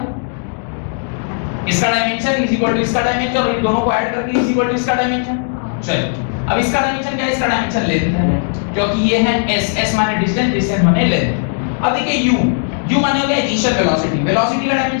इसका डायमेंशन इज इक्वल टू इसका डायमेंशन और इन दोनों को ऐड करके इज इक्वल टू इसका डायमेंशन। चलिए अब इसका डायमेंशन क्या है, इसका डायमेंशन लेंथ है, क्योंकि ये है s, s माने डिस्टेंस, डिस्टेंस माने लेंथ। अब देखिए u, u माने हो गया इनिशियल वेलोसिटी। वेलोसिटी का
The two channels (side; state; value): right; silent; digital silence